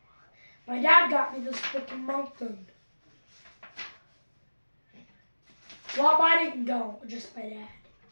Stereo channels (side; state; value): both; inverted; correlation -1.00